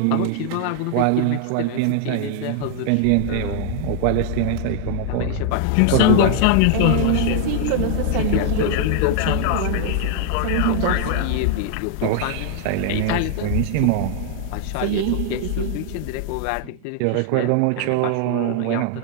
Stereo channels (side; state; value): both; different; correlation -0.01